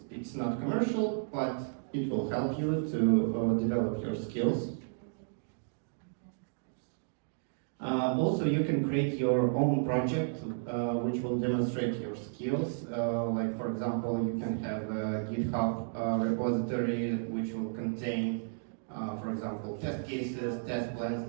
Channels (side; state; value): left; silent; digital silence